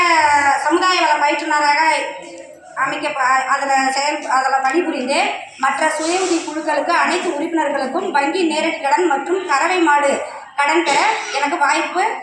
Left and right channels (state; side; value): identical; both; correlation 1.00